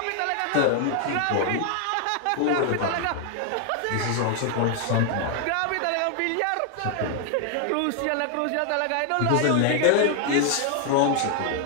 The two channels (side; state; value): both; different; correlation 0.00